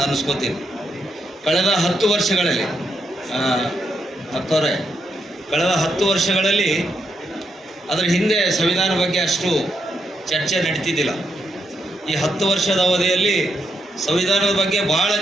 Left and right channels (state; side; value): normal; both; correlation 0.80